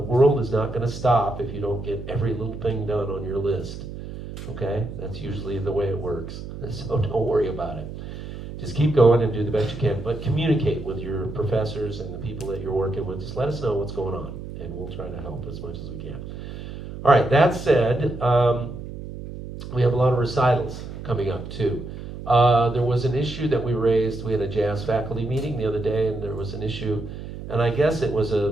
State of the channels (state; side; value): noise; right; hum, 10 dB below the sound